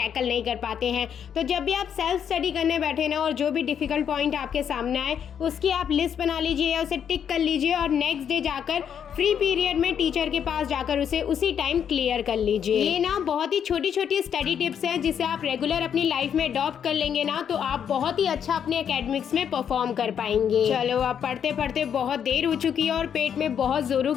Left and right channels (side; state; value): right; quieter; 8.3 dB